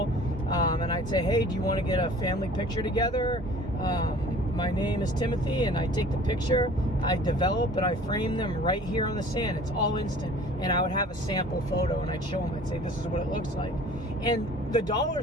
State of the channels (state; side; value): normal; both; correlation 0.48